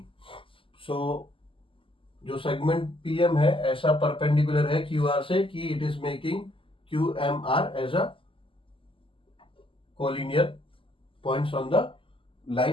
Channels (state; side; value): late; right; 0.25 ms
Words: So जो segment PM है ऐसा perpendicular है QR से कि it is making QMR as a collinear points on the